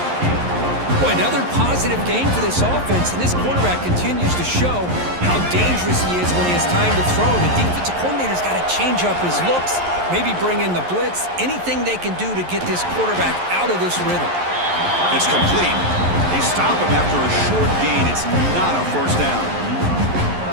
Boy, another positive game for this offense, and this quarterback continues to show how dangerous he is when he has time to throw. The defensive coordinator's got to change up his looks, maybe bring in the blitz, anything they can do to get this quarterback out of this rhythm. It's complete. They stop him after a short gain. It's not a first down.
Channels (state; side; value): late; left; 11 ms